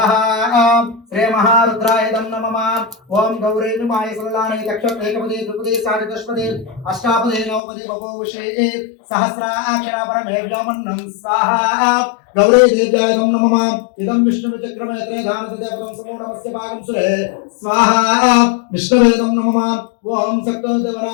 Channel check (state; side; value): drops out; right; at 7.6 s